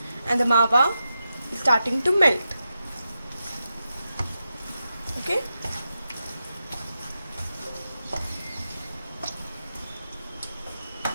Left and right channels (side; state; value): both; inverted; correlation -0.88